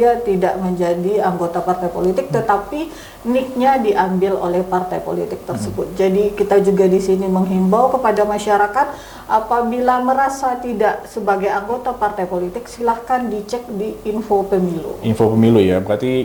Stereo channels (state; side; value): identical; both; correlation 1.00